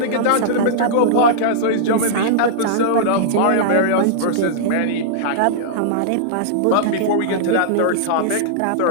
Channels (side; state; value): both; different; correlation -0.02